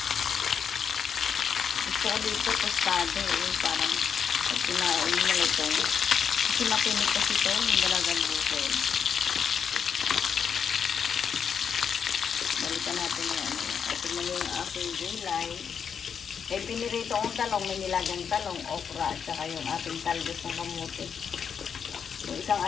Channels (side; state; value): right; quieter; 7.1 dB